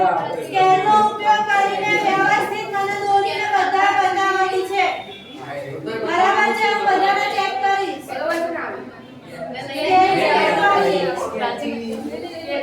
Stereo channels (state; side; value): identical; both; correlation 1.00